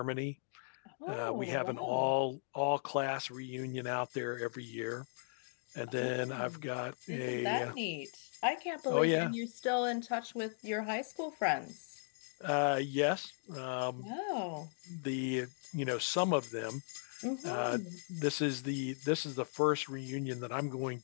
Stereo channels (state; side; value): silent; right; digital silence